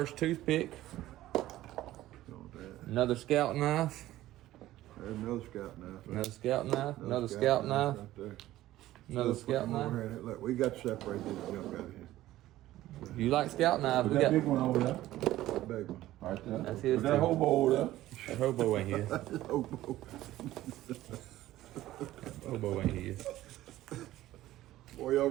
toothpick. Another scout knife. There's another Scout knife. Another scout knife. Another scout knife. Right there. Another Let's put scout them over knife. here. Look, we got to separate this junk out of here. If you like scout knives, we That big got one over there. That big one. Right there. That's his Put that too. hobo over there. that hobo ain't his. Oh, Hobo ain't his. boy, y'all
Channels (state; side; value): quieter; left; 15.1 dB